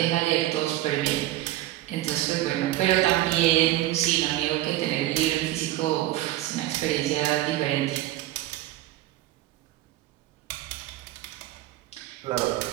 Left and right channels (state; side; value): quieter; left; 15.2 dB